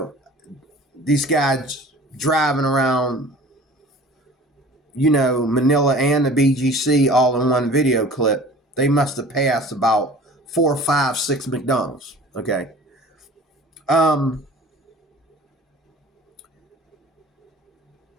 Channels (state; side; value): normal; both; correlation 0.44